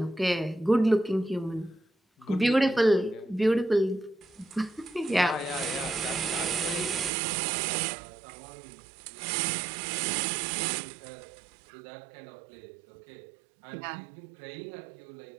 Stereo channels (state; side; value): drops out; left; at 7.1 s